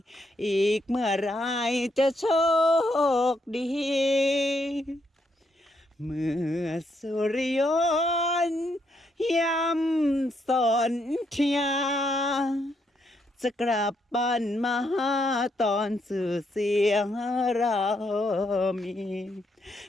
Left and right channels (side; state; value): both; normal; correlation 0.77